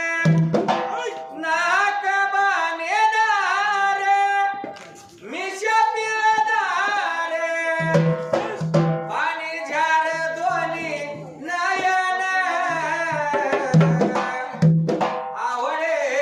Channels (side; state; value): both; identical; correlation 1.00